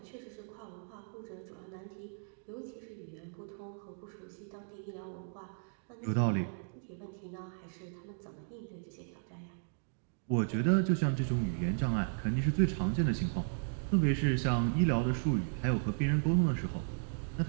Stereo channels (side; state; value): left; silent; digital silence